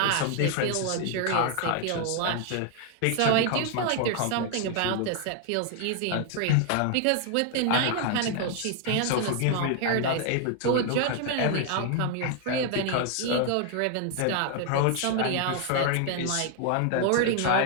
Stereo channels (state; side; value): different; both; correlation 0.00